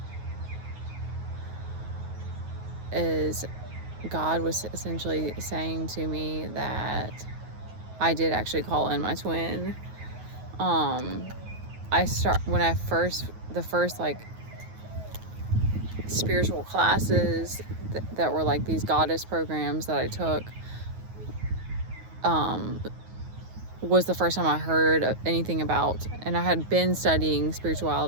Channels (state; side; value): late; left; 9.4 ms